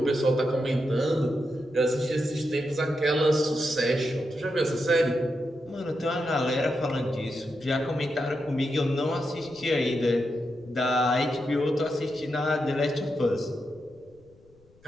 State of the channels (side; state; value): left; noise; rumble, 30 dB below the sound